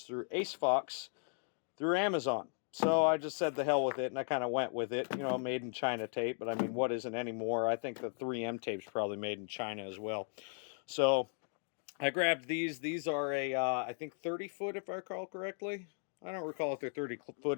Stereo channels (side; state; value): right; silent; 53 dB below the other